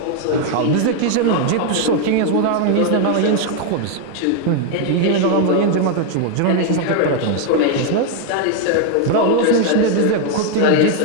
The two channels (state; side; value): different; both; correlation 0.01